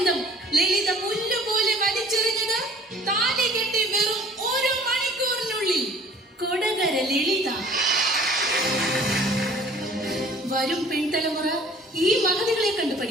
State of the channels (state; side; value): normal; both; correlation 0.51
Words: ലളിത പുല്ലുപോലെ വലിച്ചെറിഞ്ഞത് താലി കെട്ടി വെറും 1 മണിക്കൂറിനുള്ളിൽ. കൊടകര ലളിത. വരും പിൻതലമുറ ഈ മഹതികളെ കണ്ടു